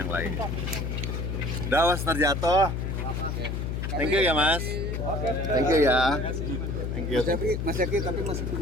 lain. Dawas terjatuh. Thank you ya Mas. Thank you ya. Thank you. Mas Zaki, tapi masih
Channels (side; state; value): left; noise; hum, 2 dB below the sound